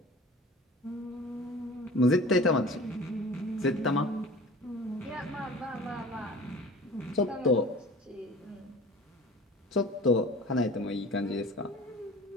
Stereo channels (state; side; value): normal; both; correlation 0.41